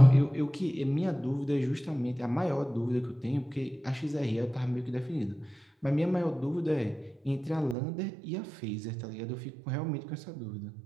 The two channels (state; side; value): drops out; left; at 7.8 s